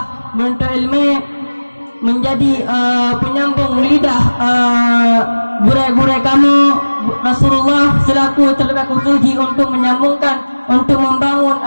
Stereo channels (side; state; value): both; inverted; correlation -1.00